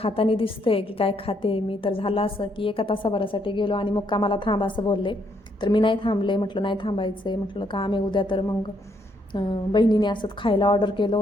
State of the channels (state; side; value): normal; both; correlation 0.73